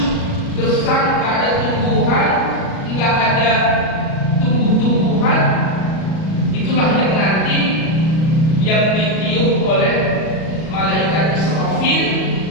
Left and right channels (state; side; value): late; right; 37 ms